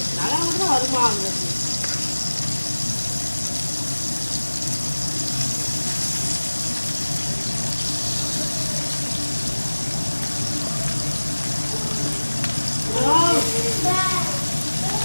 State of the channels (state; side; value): inverted; both; correlation -1.00